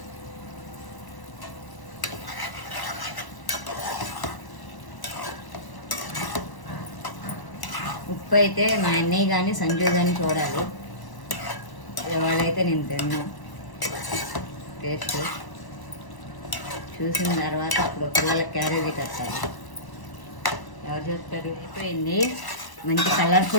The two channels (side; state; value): right; late; 1.0 ms